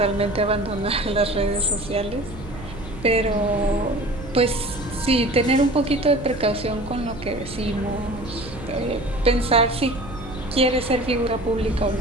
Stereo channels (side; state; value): right; noise; hum, 14 dB below the sound